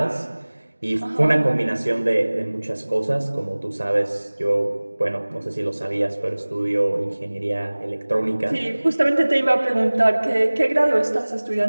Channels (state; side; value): inverted; both; correlation -1.00